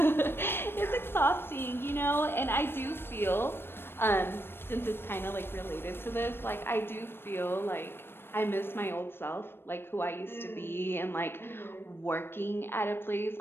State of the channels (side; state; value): right; late; 0.11 ms